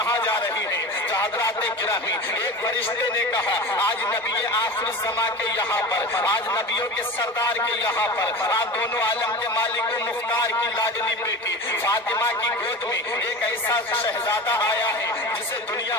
جا رہی ہے؟ تو حضرات گرامی، ایک فرشتے نے کہا آج نبی آخر الزماں کے یہاں پر، آج نبیوں کے سردار کے یہاں پر، آج دونوں عالم کے مالک و مختار کی لاڈلی بیٹی فاطمہ کی گود میں ایک ایسا شہزادہ آیا ہے جسے دنیا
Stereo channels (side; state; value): both; normal; correlation 0.31